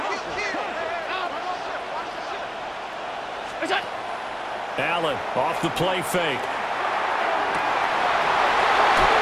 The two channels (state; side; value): identical; both; correlation 1.00